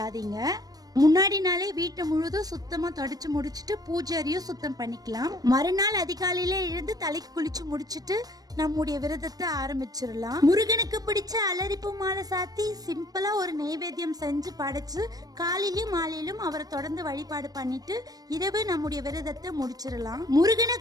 முன்னாடி நாளே வீட்டை முழுதும் சுத்தமா தொடச்சு முடிச்சுட்டு பூஜை அறையும் சுத்தம் பண்ணிக்கலாம். மறுநாள் அதிகாலையில எழுந்து தலைக்கு குளிச்சு முடிச்சுட்டு நம்முடைய விரதத்தை ஆரம்பிச்சிடலாம். முருகனுக்கு பிடிச்ச அலரிப்பு மாலை சாத்தி சிம்பிளா ஒரு நைவேத்தியம் செஞ்சு படைச்சு காலையிலும் மாலையிலும் அவரை தொடர்ந்து வழிபாடு பண்ணிட்டு இரவு நம்முடைய விரதத்தை முடிச்சிடலாம். முருகனை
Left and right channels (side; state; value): left; late; 0.18 ms